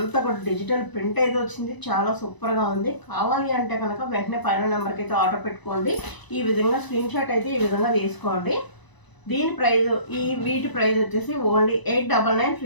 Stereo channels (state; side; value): late; right; 1.0 ms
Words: కూడా డిజిటల్ ప్రింట్ అయితే వచ్చింది, చాలా సూపర్గా ఉంది. కావాలి అంటే కనుక వెంటనే పైన నెంబర్కి అయితే ఆర్డర్ పెట్టుకోండి. ఈ విధంగా స్క్రీన్ షాట్ అయితే ఈ విధంగా తీసుకోండి. దీని ప్రైస్, వీటి ప్రైస్ వచ్చేసి ఓన్లీ 899